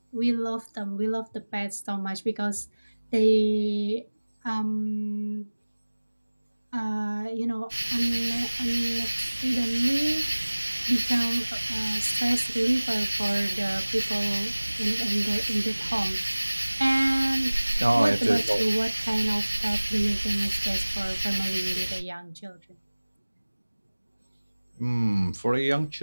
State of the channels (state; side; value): inverted; both; correlation -1.00